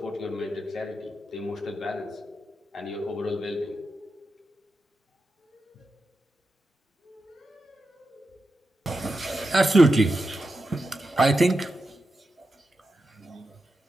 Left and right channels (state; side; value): normal; both; correlation 0.89